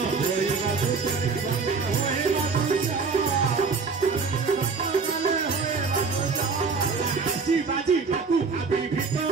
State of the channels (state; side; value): quieter; left; 4.8 dB